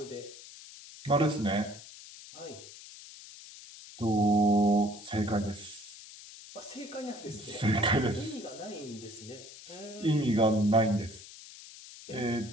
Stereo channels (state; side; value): noise; left; hiss, 16 dB below the sound